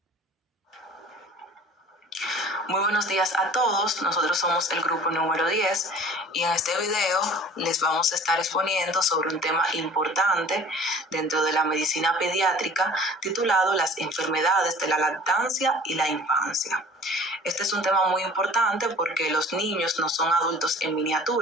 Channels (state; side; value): normal; both; correlation 0.47